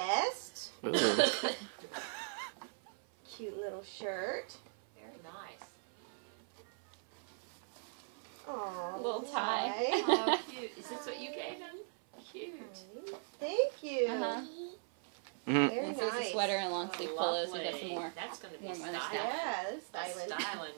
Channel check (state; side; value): silent; left; 52 dB below the other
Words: Ooh. Cute little shirt. Very nice. Aw, Little tie. Oh, cute. Is this what you gave him? Cute. Thank you. Uh-huh. Mhm. Very And so it's a nice. sweater and long sleeve pullows. We got some Lovely. more. That's going to be warm weather styling. stuff. Yeah, that's That's styling. styling,